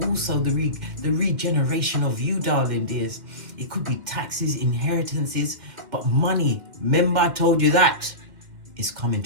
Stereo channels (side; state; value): left; late; 1.9 ms